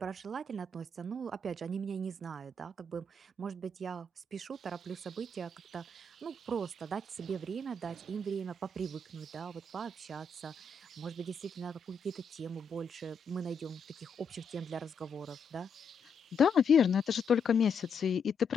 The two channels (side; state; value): right; quieter; 3.5 dB